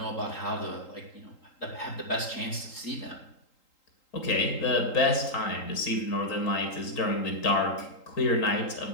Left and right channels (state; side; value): late; right; 3.8 ms